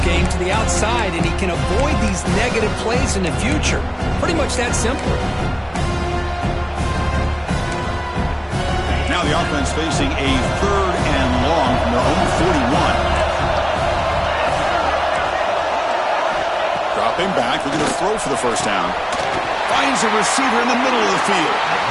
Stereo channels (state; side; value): identical; both; correlation 1.00